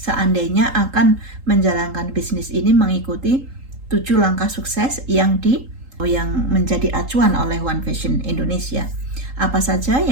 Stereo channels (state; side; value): late; left; 3.8 ms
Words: akan menjalankan bisnis ini mengikuti 7 langkah sukses yang menjadi acuan oleh One Vision Indonesia. Apa saja?